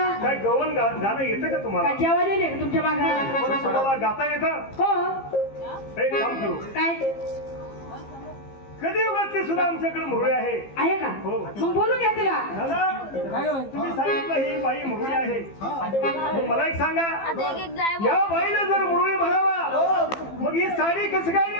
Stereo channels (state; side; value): late; right; 15 ms